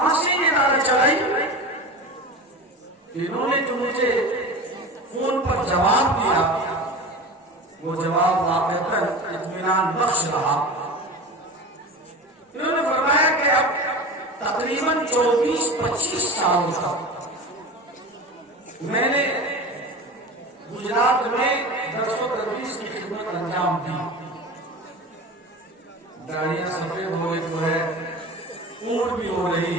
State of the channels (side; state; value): both; normal; correlation 0.31